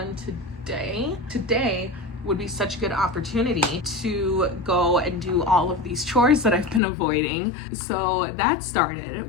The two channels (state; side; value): drops out; right; at 6.8 s